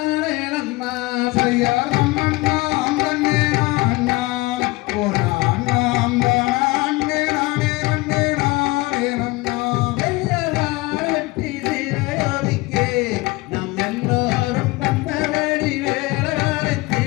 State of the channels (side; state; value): right; quieter; 22.2 dB